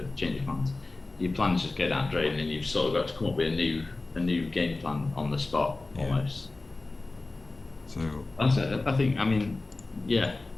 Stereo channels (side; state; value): right; quieter; 3.3 dB